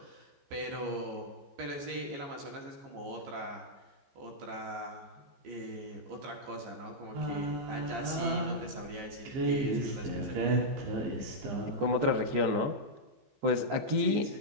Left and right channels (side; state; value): left; late; 15 ms